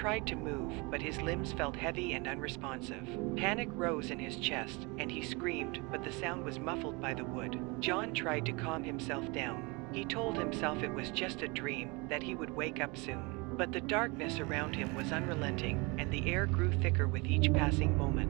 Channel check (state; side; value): quieter; left; 27.5 dB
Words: to move, but his limbs felt heavy and unresponsive. Panic rose in his chest, and he screamed, but the sound was muffled by the wood. John tried to calm himself down. He told himself it was just a dream, that he would wake up soon. But the darkness around him was unrelenting, and the air grew thicker with each passing